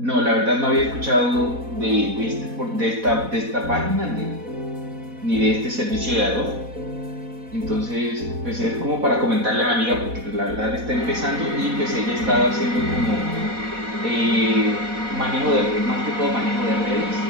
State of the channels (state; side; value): late; left; 4.1 ms